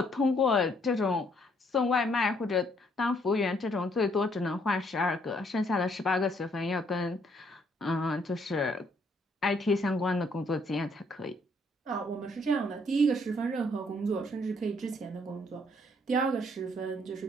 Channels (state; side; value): normal; both; correlation 0.68